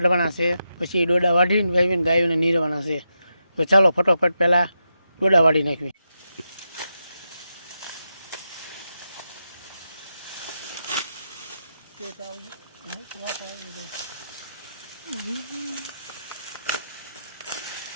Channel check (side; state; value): both; inverted; correlation -0.86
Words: છે, પછી ડોડા વાઢીને વાવીને ગાયોને નીરવાના છે। તો ચાલો ફટાફટ પહેલાં ડોડા વાઢી નાખવી।